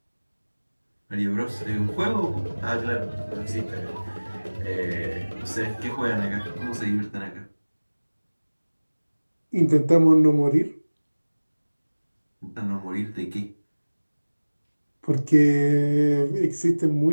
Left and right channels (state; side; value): inverted; both; correlation -1.00